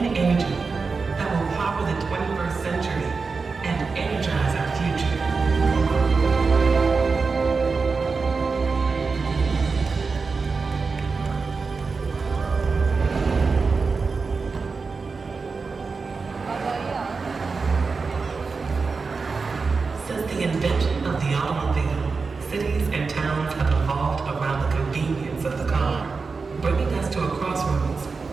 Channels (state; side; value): quieter; left; 4.6 dB